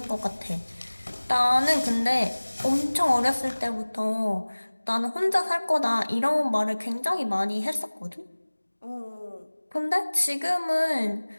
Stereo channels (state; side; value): inverted; both; correlation -1.00